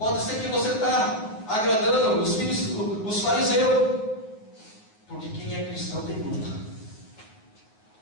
ser que você está agradando os fariseus. Porque quem é cristão tem luta.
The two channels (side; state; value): right; late; 9.4 ms